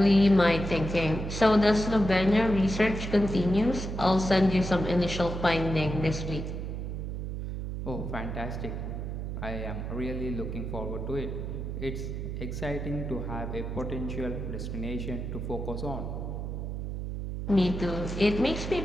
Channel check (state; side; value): noise; right; hum, 5 dB below the sound